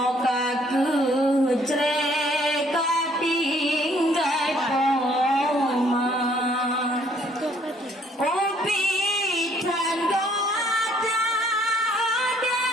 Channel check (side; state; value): both; normal; correlation 0.63